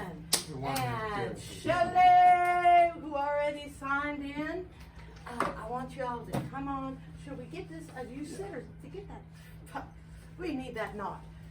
And Shelley, who already signed in. I want you all to come on. Should we get this? You sit or to get that? We need that knot.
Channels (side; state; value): both; identical; correlation 1.00